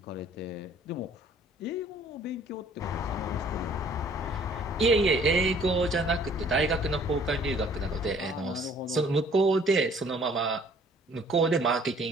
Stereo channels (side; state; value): both; normal; correlation 0.57